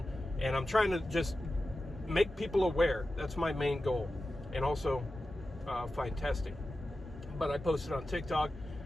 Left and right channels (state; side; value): normal; both; correlation 0.93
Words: and I'm trying to just make people aware. That's my main goal, and also find testing. But I posted on TikTok